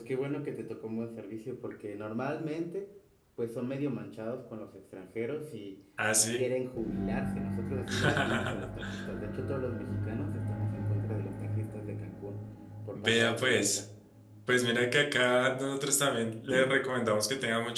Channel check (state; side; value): identical; both; correlation 1.00